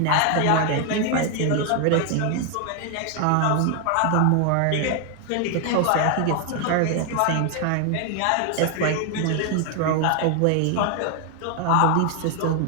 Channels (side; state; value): both; different; correlation 0.00